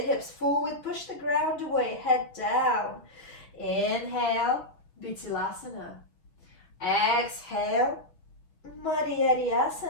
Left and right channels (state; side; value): late; right; 6.0 ms